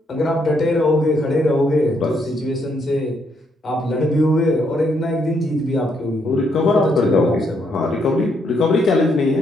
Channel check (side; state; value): both; normal; correlation 0.74